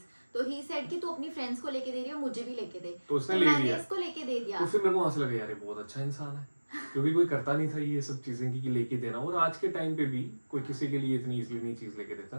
तो ही सेड कि तू अपनी फ्रेंड्स को लेके दे रही हो, मुझे भी लेके दे, तो उसने तो ले मैंने लिया। इसको लेके दे दिया। तो फिर मेरे को वहां से लगा यार ये बहुत अच्छा इंसान है, क्योंकि कोई करता नहीं था ये सब चीजें कि लेके देना। और आज के टाइम पे भी कोई किसी के लिए इतनी इजीली नहीं चीज लेके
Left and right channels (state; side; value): inverted; both; correlation -1.00